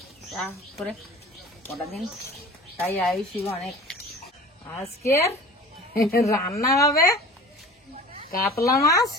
তা করে কটা দিন তাই আয়ুষি অনেক। আজকের রান্না হবে কাতলা মাছ,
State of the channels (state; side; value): normal; both; correlation 0.40